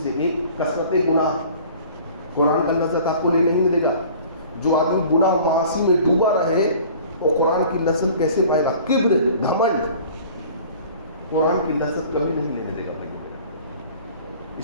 ایک کثرت گناہ، قرآن کا لذت آپ کو نہیں دے گا۔ جو آدمی گناہ معاصی میں ڈوبا رہے وہ قرآن کی لذت کیسے پائے گا؟ کبر، گھمنڈ قرآن کی لذت کبھی نہیں لینے دے گا بھائی۔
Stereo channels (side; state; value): both; inverted; correlation -0.47